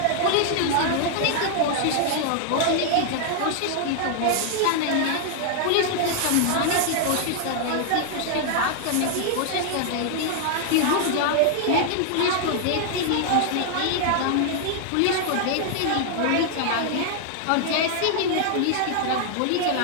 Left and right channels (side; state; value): both; different; correlation 0.00